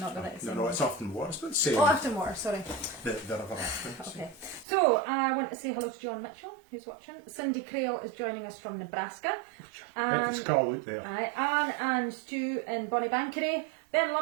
not the right song? No, it's Afton Water. It's about the same. Oh, Afton Water, sorry. The River Afton. Okay. So, I want to say hello to John Mitchell, who's watching. Cindy Crale is joining us from Nebraska. It's Carl out there. Anne and Stu in Bonnybankery. Ben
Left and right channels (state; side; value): drops out; left; at 4.7 s